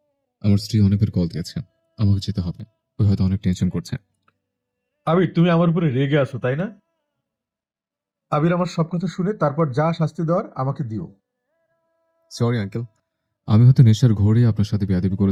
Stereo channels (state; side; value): identical; both; correlation 1.00